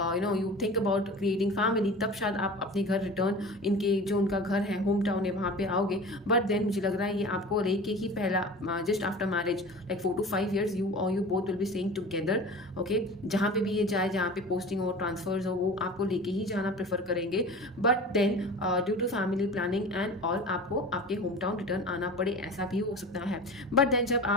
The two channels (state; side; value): normal; both; correlation 0.36